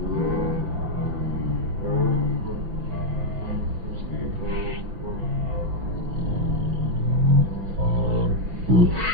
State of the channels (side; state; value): left; late; 5.9 ms